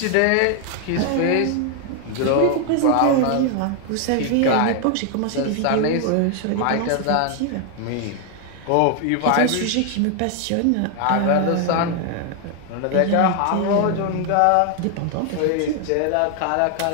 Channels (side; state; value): both; different; correlation 0.00